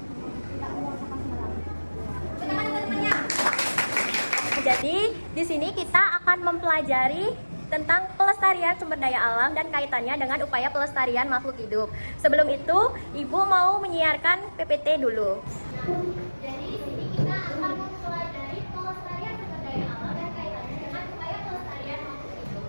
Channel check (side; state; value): both; inverted; correlation -1.00